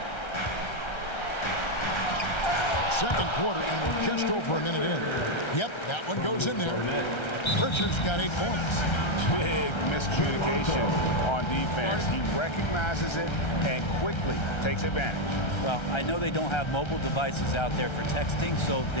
Second quarter, and we're just over a minute in. Yep, that one goes in there. Pritchard's got 8 points. Big miscommunication on defense. He recognizes it and quickly takes advantage. Well, I know they don't have mobile devices out there for texting, so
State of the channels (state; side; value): late; right; 1.3 ms